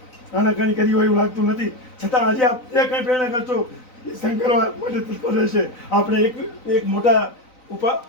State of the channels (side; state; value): right; late; 3.9 ms